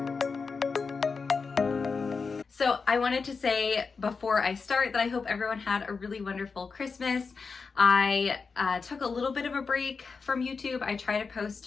So I wanted to say before I start that I hope everyone had a really wonderful Christmas. I took a little bit of a break from YouTube. I try to post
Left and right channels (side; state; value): right; quieter; 4.9 dB